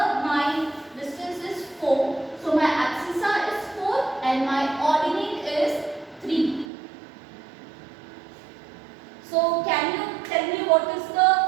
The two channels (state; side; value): drops out; left; at 6.7 s